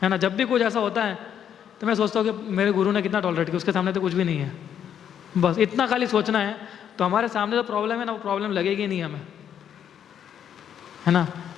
है ना। जब भी कुछ ऐसा होता है तो मैं सोचता हूँ कि मेरे गुरु ने कितना टॉलरेट किया, उसके सामने तो कुछ भी नहीं है, बस इतना खाली सोचना है। तो हमारे सामने जो प्रॉब्लम है ना, वो प्रॉब्लम लगेगी नहीं हमें, है ना,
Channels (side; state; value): right; quieter; 9.1 dB